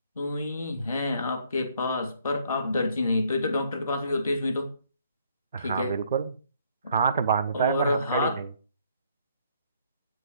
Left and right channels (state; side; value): inverted; both; correlation -0.66